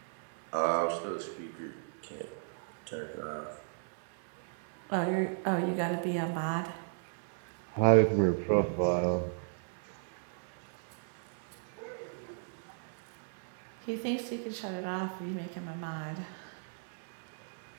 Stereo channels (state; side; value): silent; left; digital silence